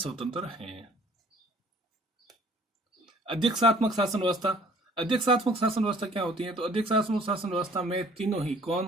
है। अध्यक्षात्मक शासन व्यवस्था। अध्यक्षात्मक शासन व्यवस्था क्या होती है? तो अध्यक्षात्मक शासन व्यवस्था में तीनों ही कौन?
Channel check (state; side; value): normal; both; correlation 0.56